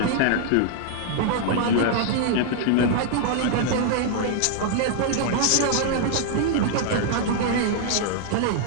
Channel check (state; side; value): different; both; correlation 0.00